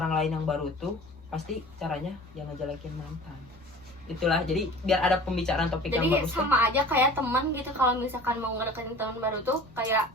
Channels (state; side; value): normal; both; correlation 0.42